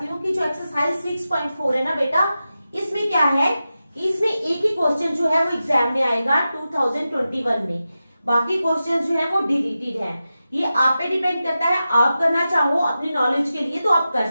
हूँ कि जो एक्सरसाइज 6.4 है ना बेटा, इसमें क्या है कि इसमें एक ही क्वेश्चन जो है वो एग्जाम में आएगा 2021 में। बाकी क्वेश्चन जो है वो डिलीटेड है। ये आप पे डिपेंड करता है, आप करना चाहो अपनी नॉलेज के लिए तो आप कर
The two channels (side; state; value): both; inverted; correlation -0.92